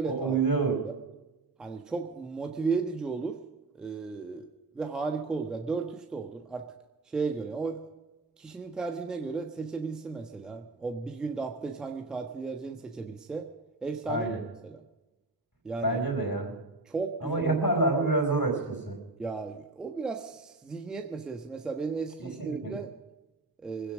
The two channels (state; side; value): quieter; left; 3.2 dB